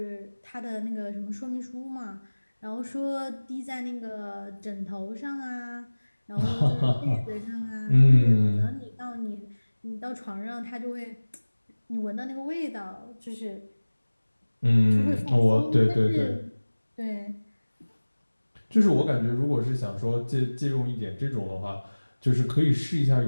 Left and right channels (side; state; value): both; inverted; correlation -1.00